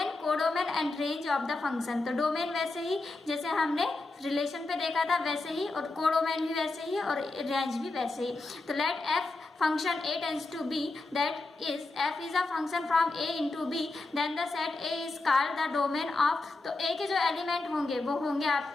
codomain and range of the function, तो डोमेन वैसे ही जैसे हमने रिलेशन पे देखा था वैसे ही, और कोडोमेन भी वैसे ही और रेंज भी वैसे ही। तो let F function a tends to b, that is f is a function from a into b, then the set a is called the domain of, तो a के जो एलिमेंट होंगे वो होंगे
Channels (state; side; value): quieter; right; 3.2 dB